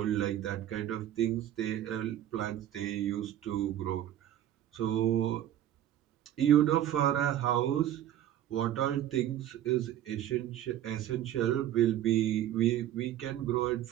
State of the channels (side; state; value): left; quieter; 11.8 dB